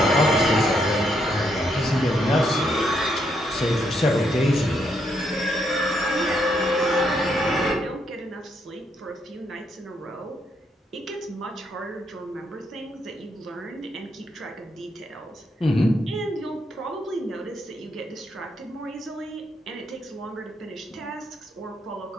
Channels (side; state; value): both; normal; correlation 0.76